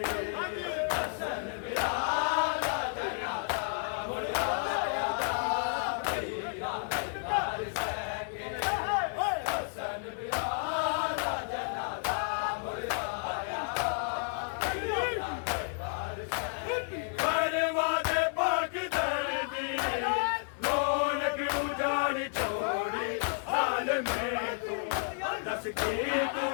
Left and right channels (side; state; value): right; silent; 57 dB below the other